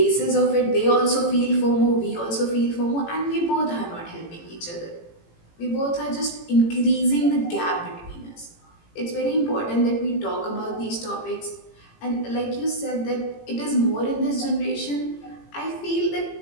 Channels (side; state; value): right; late; 18 ms